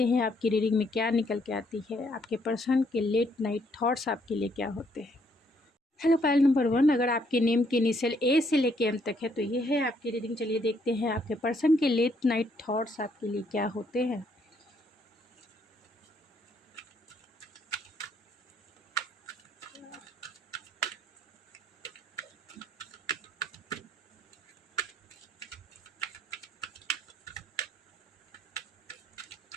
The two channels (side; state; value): both; normal; correlation 0.69